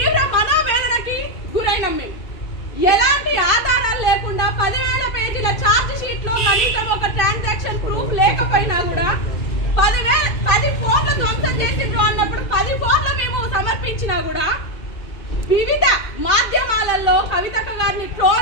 మనోవేదనకి గురైనాం మేము. ఎలాంటి ఆధారాలు లేకుండా 10,000 పేజీల ఛార్జ్ షీట్ లో కనీసం ఒక ట్రాన్సాక్షన్ ప్రూఫ్ లేకపోయినా కూడా 10 ఫోన్లు ధ్వంసం చేసిండ్రు అన్నప్పుడు 10 ఫోన్లు మేము సమర్పించినా కూడా వివిధ మాధ్యమాలలో కవితక్క గారిని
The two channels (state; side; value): late; right; 2.5 ms